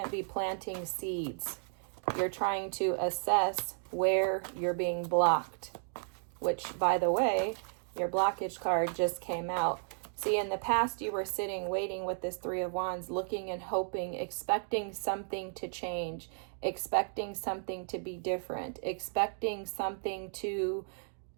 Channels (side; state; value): left; silent; digital silence